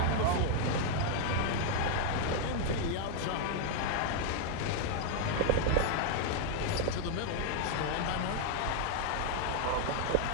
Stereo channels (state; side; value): different; both; correlation 0.00